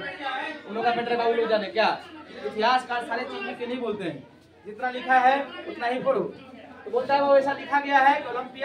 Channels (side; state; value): both; identical; correlation 1.00